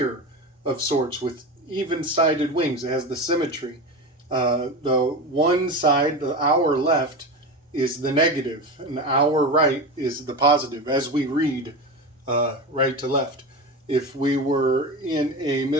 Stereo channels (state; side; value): normal; both; correlation 0.24